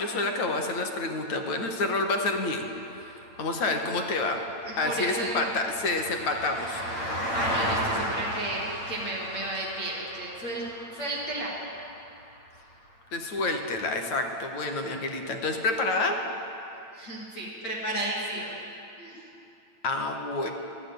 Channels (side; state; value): right; late; 8.8 ms